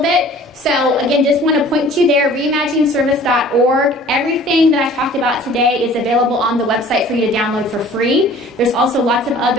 bit. So again, just want to point you there, reimaginingservice.org. Everything that I talked about today is available on the website for you to download for free. There's also lots of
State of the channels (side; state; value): both; normal; correlation 0.49